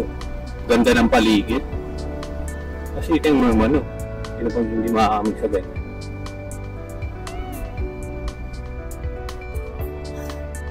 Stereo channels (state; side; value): identical; both; correlation 1.00